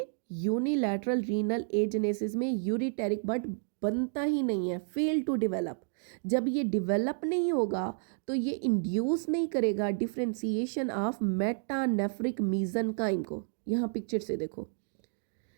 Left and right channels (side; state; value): left; silent; 57 dB below the other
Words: यूनिलैटरल रीनल एजेनेसिस में यूरिटेरिक बड बनता ही नहीं है, फेल टू डेवलप। जब ये डेवलप नहीं होगा तो ये इंड्यूस नहीं करेगा डिफ्रेंसिएशन ऑफ मेटानेफ्रिक मीजनकाइम को। यहाँ पिक्चर से देखो,